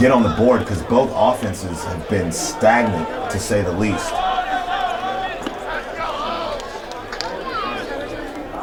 on the board, because both offenses have been stagnant, to say the least.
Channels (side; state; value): both; identical; correlation 1.00